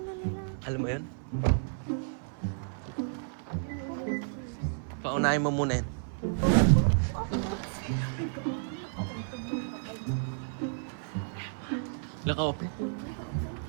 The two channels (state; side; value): silent; left; 57 dB below the other